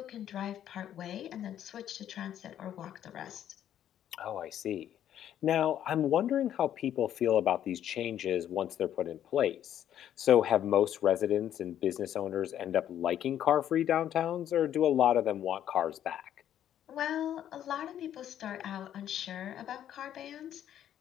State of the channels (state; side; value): quieter; right; 10.7 dB